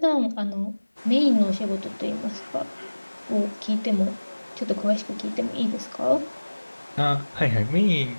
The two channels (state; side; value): inverted; both; correlation -1.00